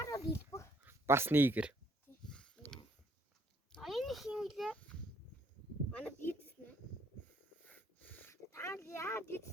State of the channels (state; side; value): normal; both; correlation 0.65